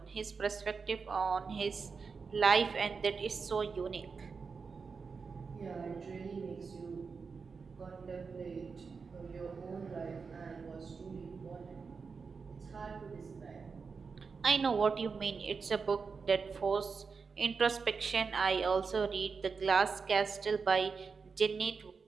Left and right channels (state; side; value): quieter; left; 5.1 dB